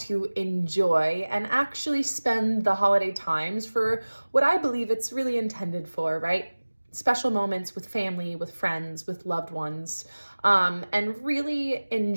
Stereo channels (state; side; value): inverted; both; correlation -1.00